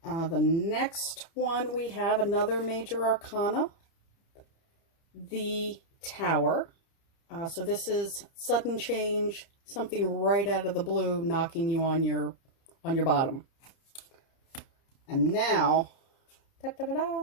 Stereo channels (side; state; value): right; late; 30 ms